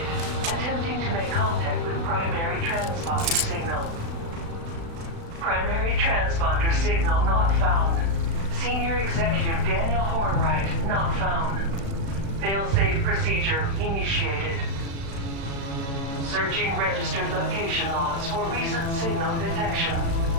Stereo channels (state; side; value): late; left; 36 ms